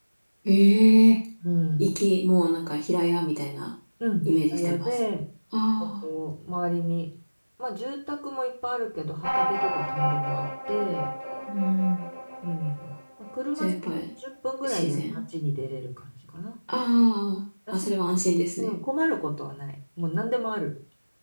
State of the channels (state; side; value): inverted; both; correlation -1.00